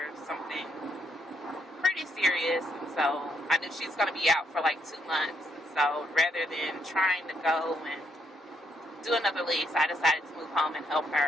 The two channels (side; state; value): both; normal; correlation 0.75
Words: something pretty serious, and so I knew she's going to be out for like 2 months. And so rather than trying to go and do another lease, I decided to move home and help